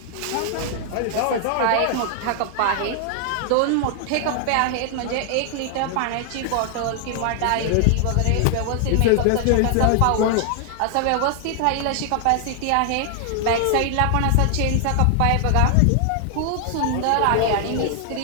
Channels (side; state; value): both; different; correlation 0.00